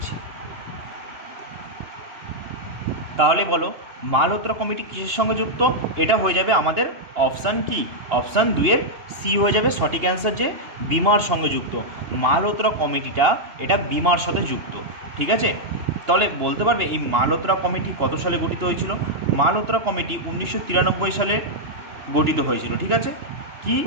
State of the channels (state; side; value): late; left; 2.9 ms